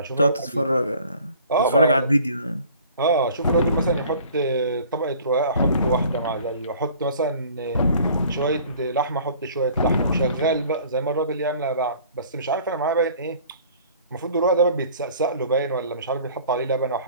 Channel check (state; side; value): inverted; both; correlation -0.50